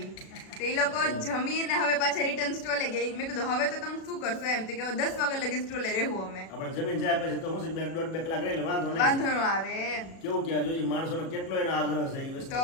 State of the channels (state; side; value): late; right; 37 ms